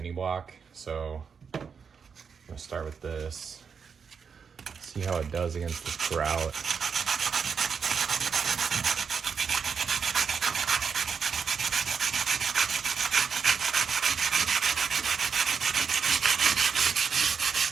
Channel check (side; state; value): left; quieter; 6.2 dB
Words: block. So I'm going to start with this, see how it does against this grout.